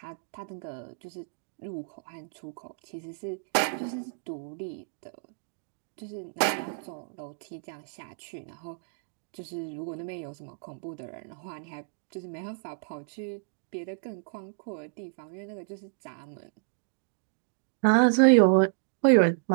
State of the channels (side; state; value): left; silent; digital silence